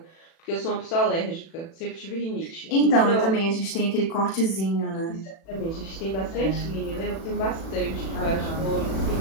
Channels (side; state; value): right; late; 36 ms